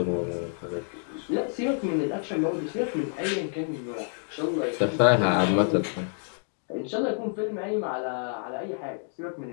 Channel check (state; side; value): silent; right; 59 dB below the other